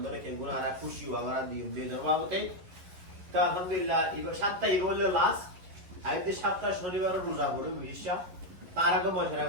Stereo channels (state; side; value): late; left; 11 ms